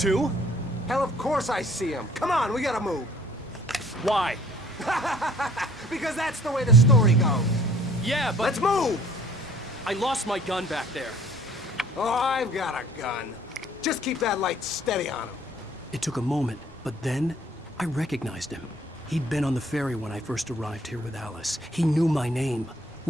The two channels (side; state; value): both; normal; correlation 0.56